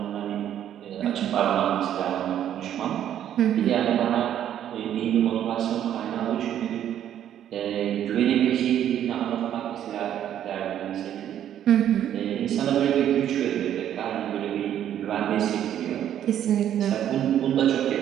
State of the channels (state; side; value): quieter; left; 10.6 dB